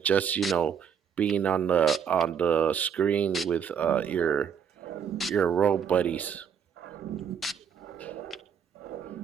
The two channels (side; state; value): left; quieter; 7.6 dB